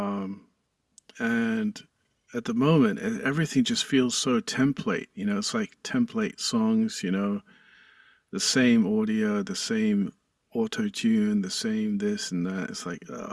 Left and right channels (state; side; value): identical; both; correlation 1.00